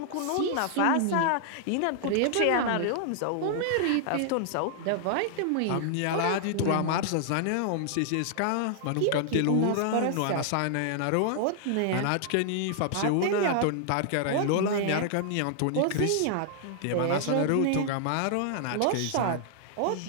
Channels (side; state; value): both; different; correlation -0.01